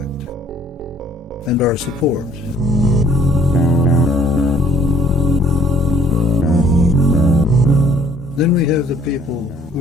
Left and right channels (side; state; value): both; normal; correlation 0.59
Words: and our support. Then we have the people